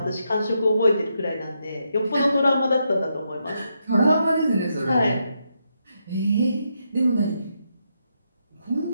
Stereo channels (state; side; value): inverted; both; correlation -0.81